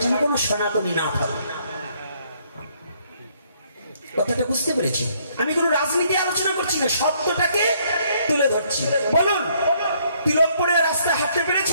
যেন কোনো সনাতনী না থাকে। কথাটা বুঝতে পেরেছি? আমি কোনো রাজনীতি আলোচনা করছি না, সত্যটাকে তুলে ধরছি। বলুন, তিলক পরে রাস্তায় হাঁটতে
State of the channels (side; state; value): both; inverted; correlation -0.67